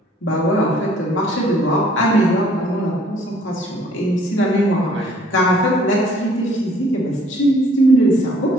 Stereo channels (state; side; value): normal; both; correlation 0.59